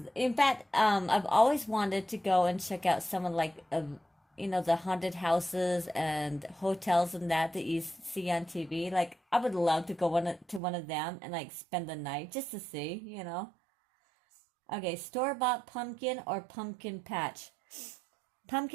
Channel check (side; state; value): left; drops out; at 10.6 s